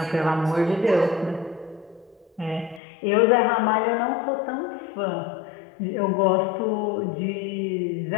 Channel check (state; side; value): drops out; right; at 2.8 s